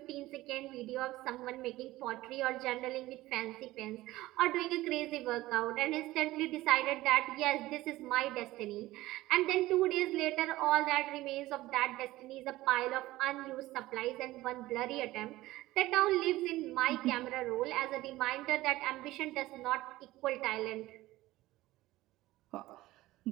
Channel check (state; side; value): quieter; left; 17.4 dB